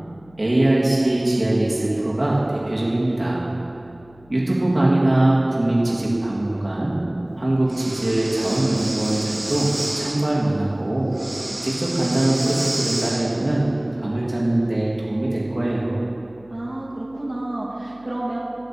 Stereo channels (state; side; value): noise; left; hum, 28 dB below the sound